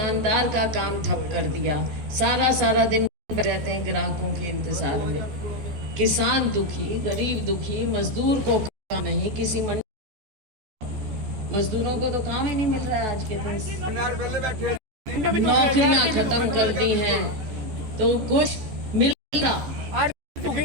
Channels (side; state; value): left; late; 14 ms